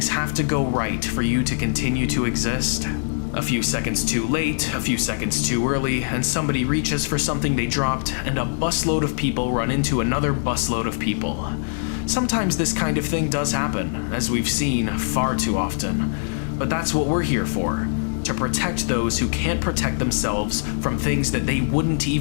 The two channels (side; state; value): right; silent; 64 dB below the other